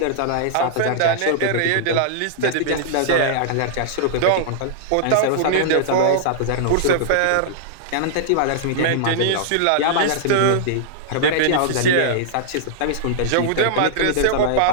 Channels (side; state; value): both; different; correlation -0.01